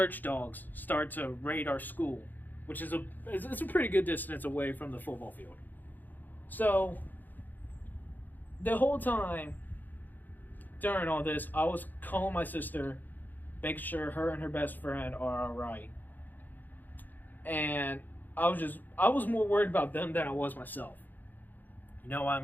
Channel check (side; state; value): right; late; 0.086 ms